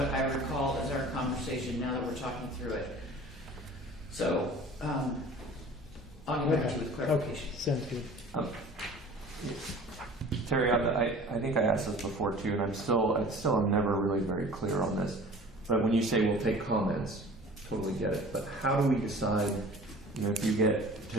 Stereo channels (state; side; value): normal; both; correlation 0.44